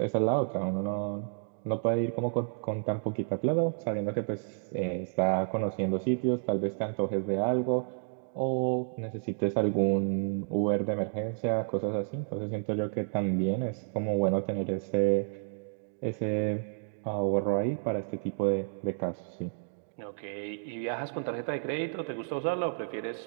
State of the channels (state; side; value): silent; left; digital silence